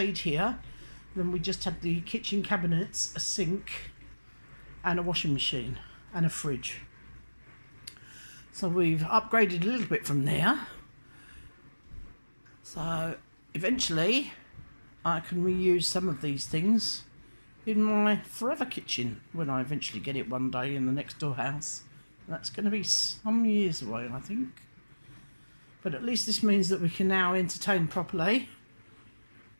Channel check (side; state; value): both; inverted; correlation -1.00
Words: here, then we just had the kitchen cabinets, a sink, and a washing machine, and a fridge. So we've upgraded a little bit from there. So eventually I can reuse some of these things in my forever kitchen when I eventually get it one day in the next door house. That's going to be some years away, I think. But at least this means that we can now entertain properly.